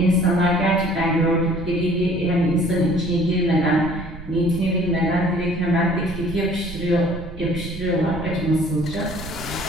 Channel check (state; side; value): noise; right; rumble, 12 dB below the sound